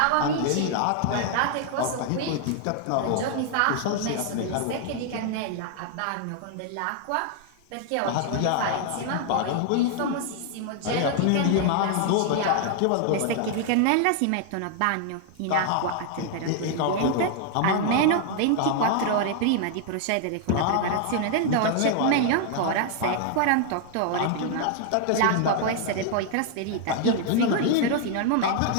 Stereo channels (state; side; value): different; both; correlation 0.00